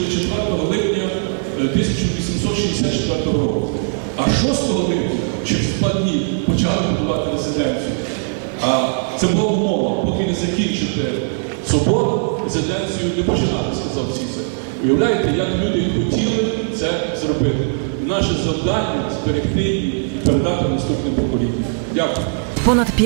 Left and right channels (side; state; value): left; silent; digital silence